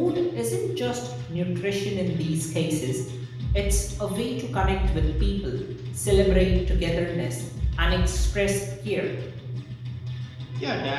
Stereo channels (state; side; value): identical; both; correlation 1.00